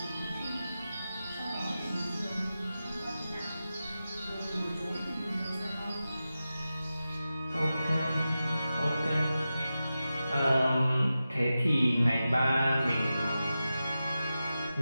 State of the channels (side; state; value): both; inverted; correlation -0.93